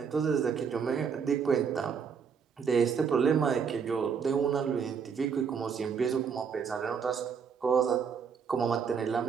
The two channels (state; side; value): quieter; left; 6.5 dB